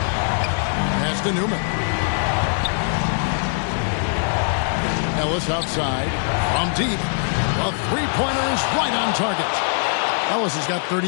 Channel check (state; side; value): silent; right; 64 dB below the other